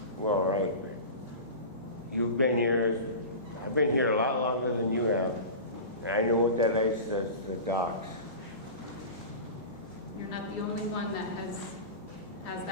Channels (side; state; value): both; inverted; correlation -0.30